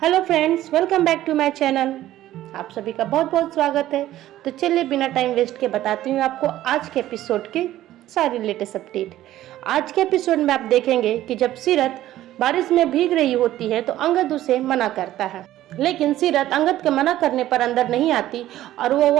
Hello friends, welcome back to my channel. आप सभी का बहुत बहुत स्वागत है। तो चलिए बिना टाइम वेस्ट के बताती हूँ आपको आज के एपिसोड की सारी लेटेस्ट अपडेट। आज के एपिसोड में आप देखेंगे कि जब सीरत बारिश में भीग रही होती है तो अंगद उसे मना करता है, लेकिन सीरत अंगद के मना करने पर अंदर नहीं आती और वो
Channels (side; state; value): left; quieter; 14.0 dB